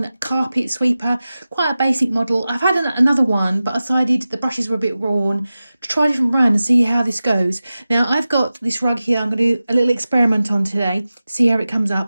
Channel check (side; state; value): both; inverted; correlation -0.95